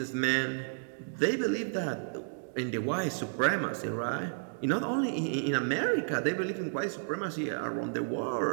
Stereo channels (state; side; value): silent; left; digital silence